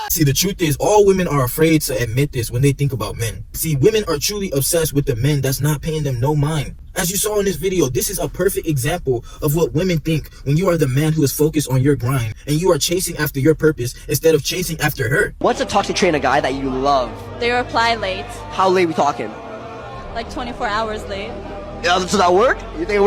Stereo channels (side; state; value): both; identical; correlation 1.00